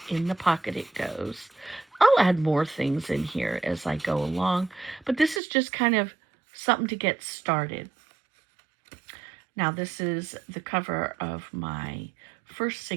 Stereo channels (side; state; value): left; drops out; at 5.4 s